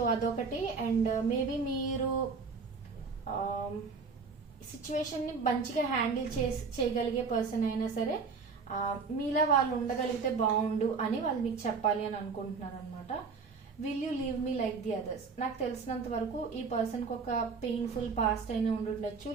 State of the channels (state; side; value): quieter; left; 4.9 dB